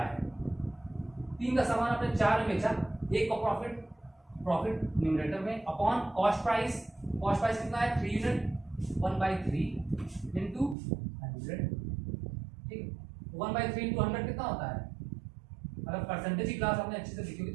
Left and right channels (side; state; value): left; drops out; at 10.8 s